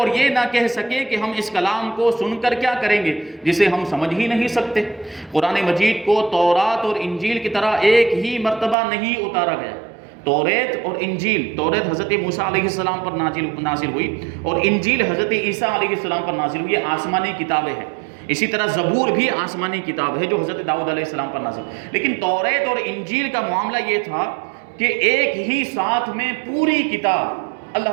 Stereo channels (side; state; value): left; drops out; at 8.8 s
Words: یہ نہ کہہ سکے کہ ہم اس کلام کو سن کر کیا کریں گے جسے ہم سمجھ ہی نہیں سکتے. قرآن مجید کو تورات اور انجیل کی طرح ایک ہی مرتبہ نہیں اتارا گیا. توریت اور انجیل, توریت حضرت موسیٰ علیہ السلام پر نازل ہوئی, اور انجیل حضرت عیسیٰ علیہ السلام پر نازل ہوئی. یہ آسمانی کتابیں ہیں. اسی طرح زبور بھی آسمانی کتاب ہے جو حضرت داؤد علیہ السلام پر نازل. لیکن توریت اور انجیل کا معاملہ یہ تھا کہ ایک ہی ساتھ میں پوری کتاب